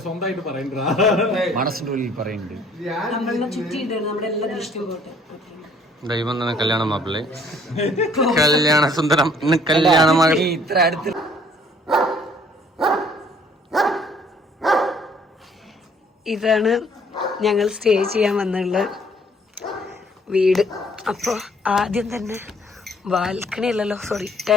മനസ്സിന്റെ ഉള്ളിൽ പറയുന്നുണ്ട്. നമ്മളെ ചുറ്റിയിട്ടാണ് നമ്മുടെ എല്ലാ ദൃഷ്ടിയും പോട്ടെ. ദൈവം തന്നെ കല്യാണ മാപ്പിള്ളേ, കല്യാണ സുന്ദരം, ഇന്ന് കല്യാണ മകൾ. ഇത്ര അടുത്ത് ഇതാണ് ഞങ്ങൾ സ്റ്റേ ചെയ്യാൻ വന്നുള്ള വീട്. അപ്പോൾ ആദ്യം തന്നെ ബാൽക്കണി അല്ലല്ലോ, സോറി,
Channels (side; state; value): both; normal; correlation 0.60